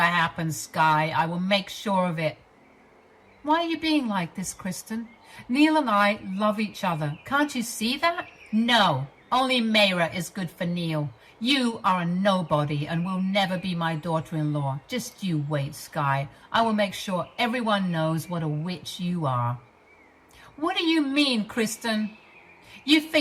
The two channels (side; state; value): both; identical; correlation 1.00